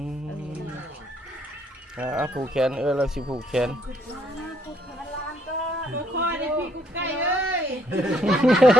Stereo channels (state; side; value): normal; both; correlation 0.69